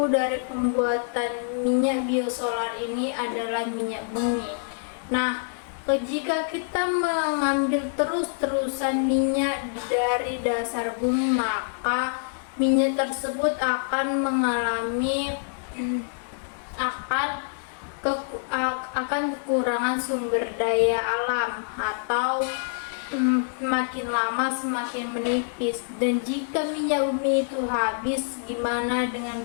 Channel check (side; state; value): right; silent; digital silence